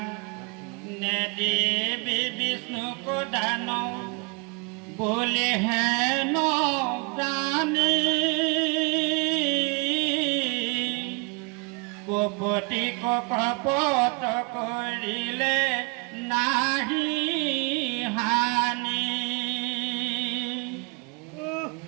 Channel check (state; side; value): quieter; left; 31.0 dB